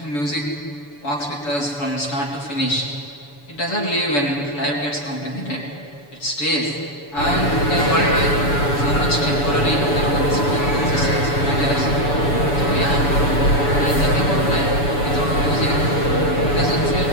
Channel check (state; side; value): late; right; 7.0 ms